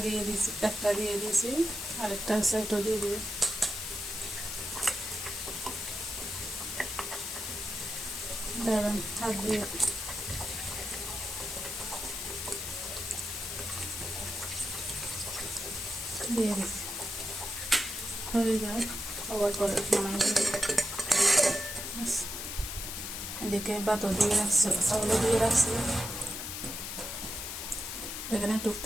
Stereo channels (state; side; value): noise; left; hiss, 5 dB below the sound